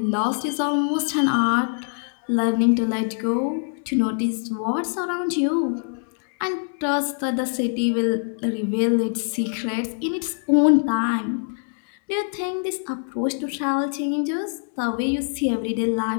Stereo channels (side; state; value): right; silent; 63 dB below the other